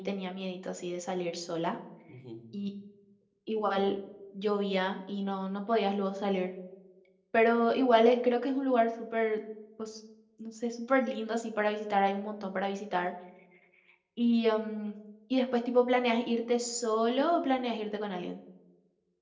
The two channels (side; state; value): both; identical; correlation 1.00